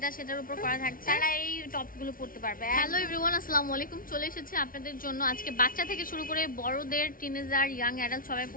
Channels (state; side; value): late; right; 0.41 ms